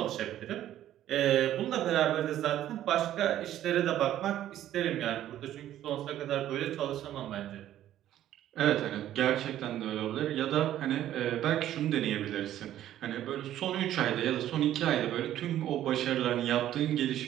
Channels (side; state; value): left; quieter; 12.3 dB